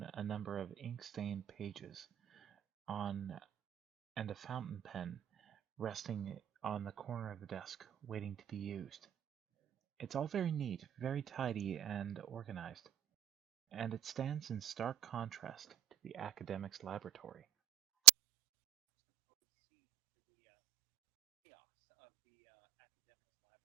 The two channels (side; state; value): left; quieter; 13.3 dB